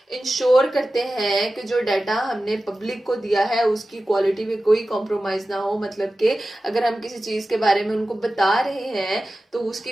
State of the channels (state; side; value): normal; both; correlation 0.95